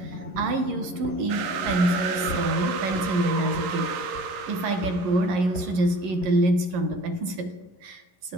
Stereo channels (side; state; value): left; late; 11 ms